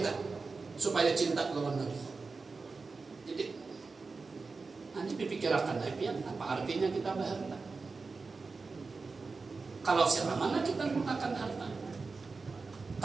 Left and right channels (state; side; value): quieter; left; 4.2 dB